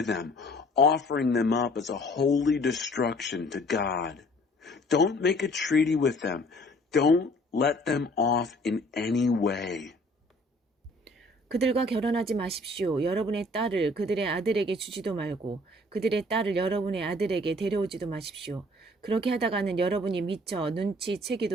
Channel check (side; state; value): both; normal; correlation 0.55